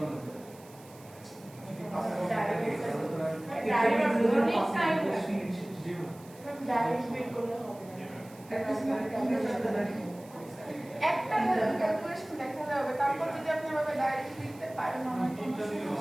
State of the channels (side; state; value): right; noise; hiss, 24 dB below the sound